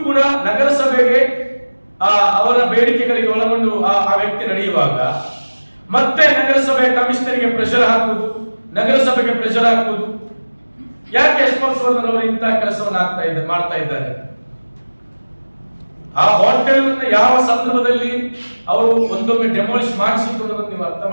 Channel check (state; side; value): inverted; both; correlation -1.00